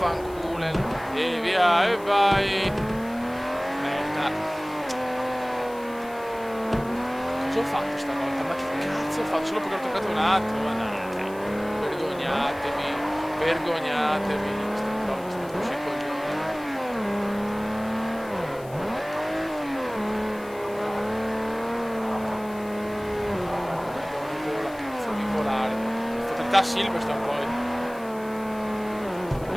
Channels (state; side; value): noise; left; hiss, 22 dB below the sound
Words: E via, e vai. Merda. Cosa ho fatto stavolta? Ma che cazzo ho fatto? Solo perché ho toccato un attimo, ma dai. Vergognatevi. Queste cose sono così coglioni. Vola, cazzo di volare. Fatalità Silverstone poi.